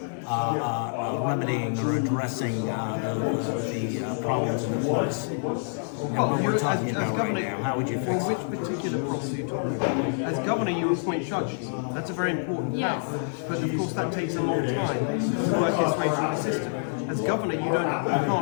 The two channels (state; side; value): silent; right; 58 dB below the other